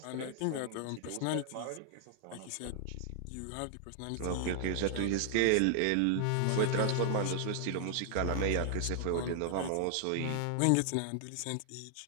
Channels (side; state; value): both; different; correlation 0.00